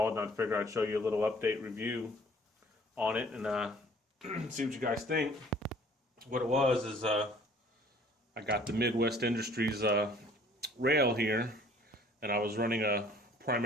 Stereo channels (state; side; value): normal; both; correlation 0.55